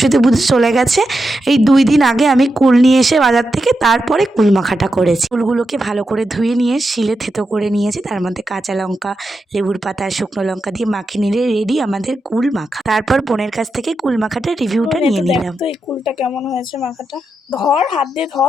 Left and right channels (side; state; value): both; normal; correlation 0.87